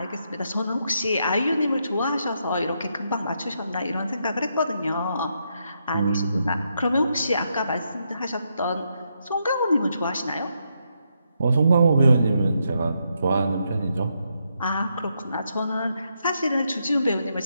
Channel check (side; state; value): both; inverted; correlation -0.80